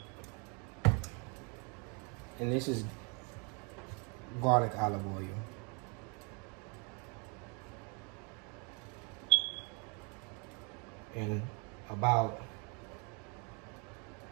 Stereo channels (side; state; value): left; quieter; 34.3 dB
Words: And this is garlic olive oil. And about,